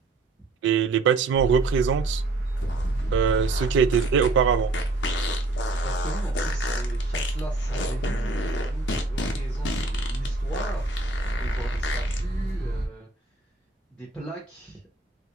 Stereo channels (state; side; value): quieter; left; 3.3 dB